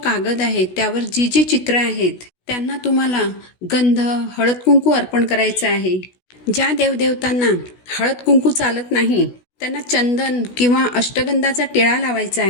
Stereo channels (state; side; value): late; right; 16 ms